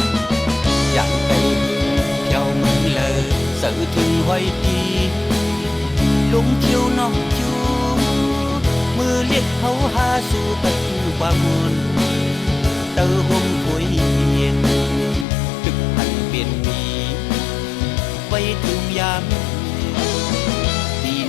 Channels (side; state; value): right; drops out; at 15.2 s